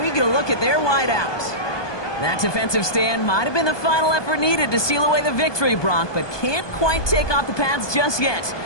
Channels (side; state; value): right; late; 1.2 ms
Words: get a look at their wideouts. That defensive stand might have been the final effort needed to seal away the victory, Brock, but can't quite take off the pads just yet.